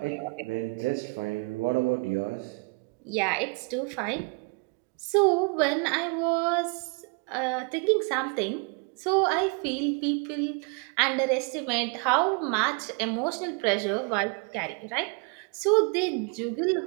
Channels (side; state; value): left; quieter; 32.8 dB